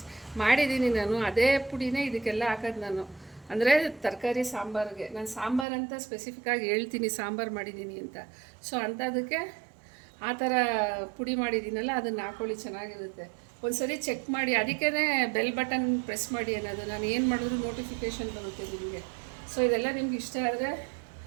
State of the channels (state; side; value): drops out; left; at 5.7 s